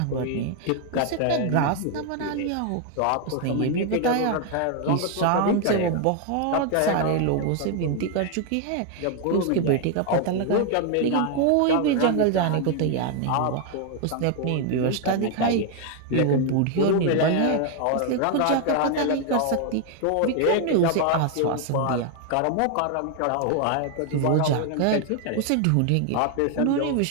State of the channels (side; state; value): both; different; correlation 0.01